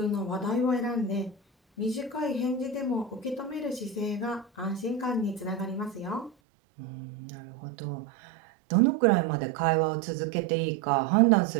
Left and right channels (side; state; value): left; drops out; at 6.3 s